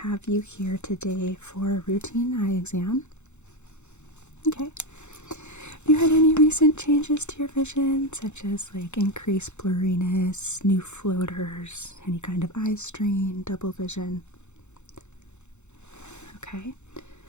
you here today for a routine eye exam. Okay. Have you had any recent changes to your vision, such as like increased blurriness, new floaters, any kind of eye strain, double vision? Okay.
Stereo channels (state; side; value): late; right; 0.83 ms